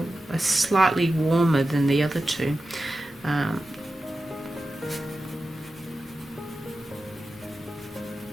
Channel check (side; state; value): both; normal; correlation 0.93